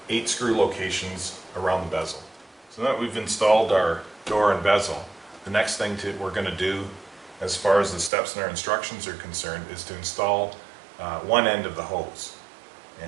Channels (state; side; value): drops out; left; at 8.1 s